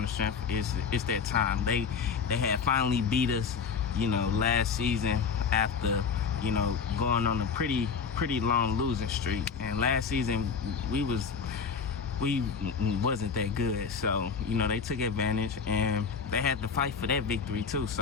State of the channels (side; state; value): right; quieter; 5.9 dB